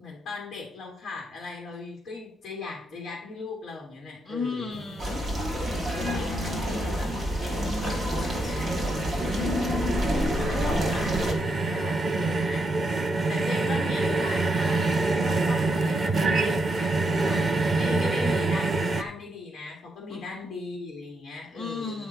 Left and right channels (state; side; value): normal; both; correlation 0.81